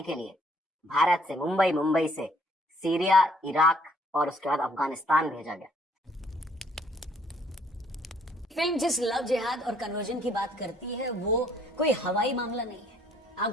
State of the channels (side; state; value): both; normal; correlation 0.63